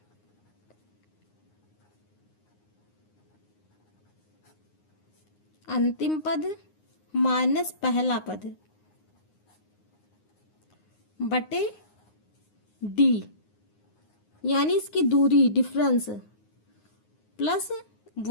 पद माइनस पहला पद बटे डी, यानी इसकी दूरी डिफरेंस प्लस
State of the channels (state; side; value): late; right; 9.6 ms